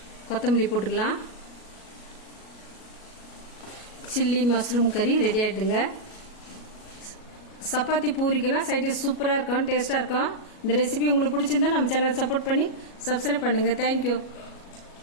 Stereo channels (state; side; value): late; right; 37 ms